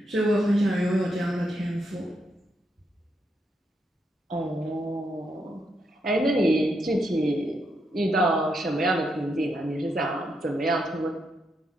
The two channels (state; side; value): normal; both; correlation 0.80